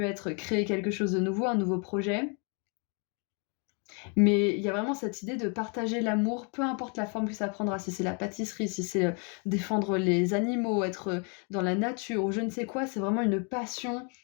être créer quelque chose de nouveau, un nouveau projet. Mais il y a vraiment cette idée de partager l'amour, peu importe la forme que ça prendra, si c'est la pâtisserie, si c'est défendre les animaux, être dans la nature ou je ne sais quoi, c'est vraiment une passion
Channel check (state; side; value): quieter; right; 36.9 dB